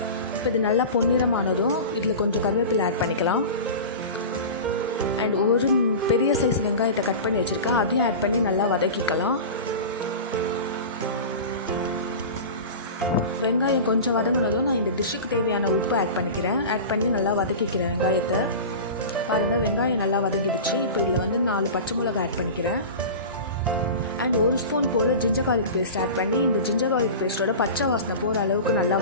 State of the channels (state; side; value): inverted; both; correlation -0.31